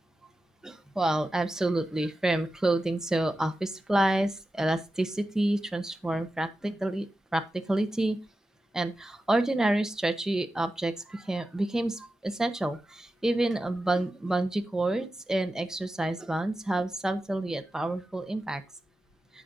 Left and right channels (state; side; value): normal; both; correlation 0.91